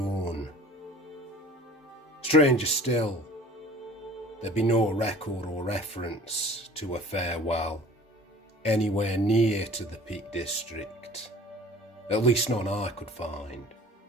Stranger still, there'd be no record or reference to a farewell anywhere near to the Peak District. At least none I could find.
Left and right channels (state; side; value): normal; both; correlation 0.45